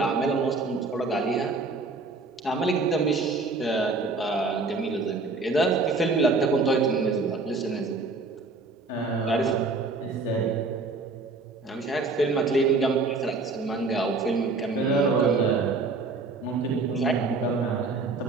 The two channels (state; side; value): quieter; left; 3.7 dB